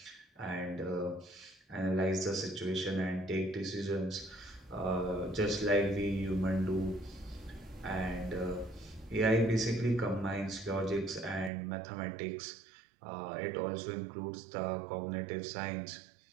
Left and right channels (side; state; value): left; drops out; at 11.5 s